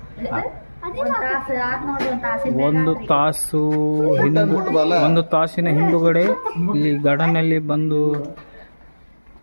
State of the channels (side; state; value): both; inverted; correlation -1.00